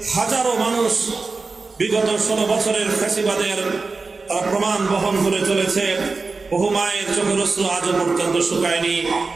হাজারো মানুষ বিগত 16 বছরের ফ্যাসিবাদের তারা প্রমাণ বহন করে চলেছে। বহু মায়ের চোখের অশ্রু আজও পর্যন্ত শুকায়নি।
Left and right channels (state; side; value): quieter; left; 4.0 dB